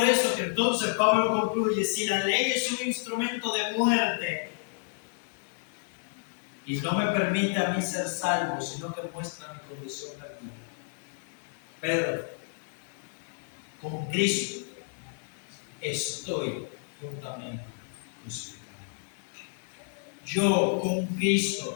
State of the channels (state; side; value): silent; right; 58 dB below the other